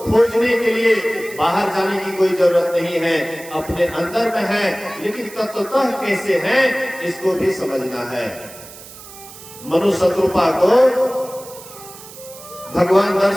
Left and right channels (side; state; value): right; noise; hiss, 17 dB below the sound